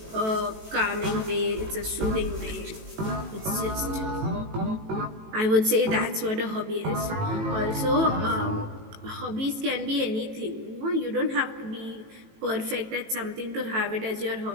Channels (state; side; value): late; left; 18 ms